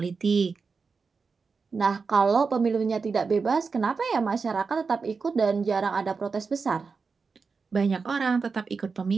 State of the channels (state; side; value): quieter; left; 4.9 dB